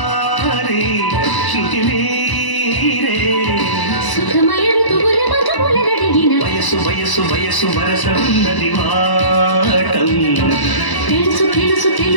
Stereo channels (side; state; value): right; late; 1.0 ms